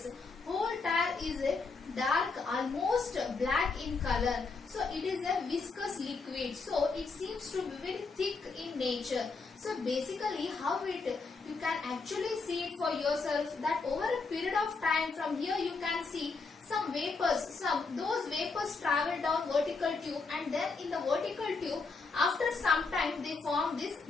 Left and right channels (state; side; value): quieter; right; 4.3 dB